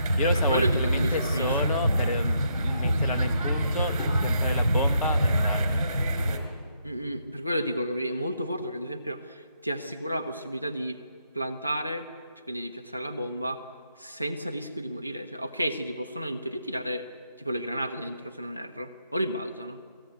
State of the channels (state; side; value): inverted; both; correlation -0.76